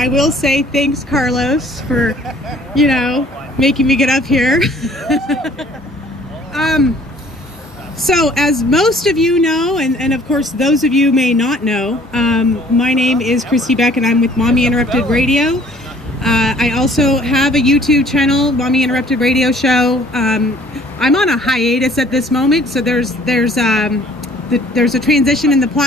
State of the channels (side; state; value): both; normal; correlation 0.56